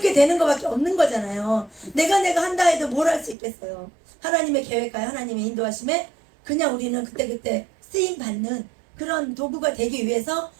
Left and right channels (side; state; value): left; drops out; at 3.4 s